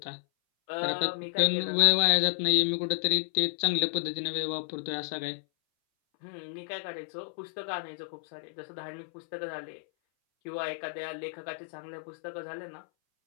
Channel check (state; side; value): silent; right; 57 dB below the other